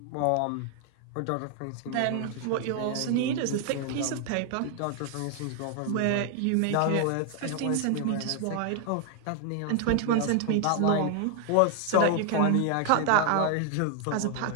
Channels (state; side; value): different; both; correlation 0.00